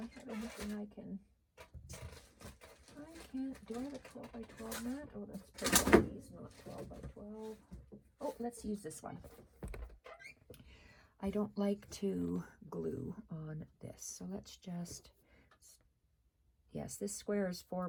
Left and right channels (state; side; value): identical; both; correlation 1.00